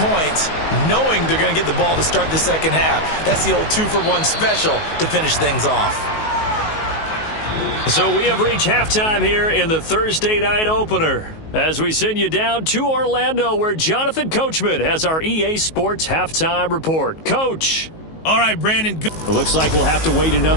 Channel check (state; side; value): late; right; 19 ms